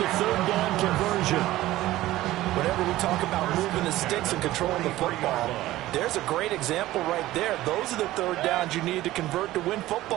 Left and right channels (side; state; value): left; quieter; 16.1 dB